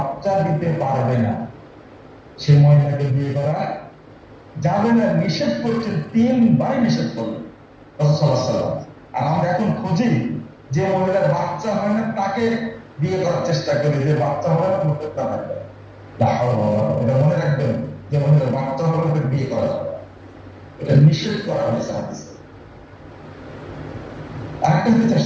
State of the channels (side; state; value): both; identical; correlation 1.00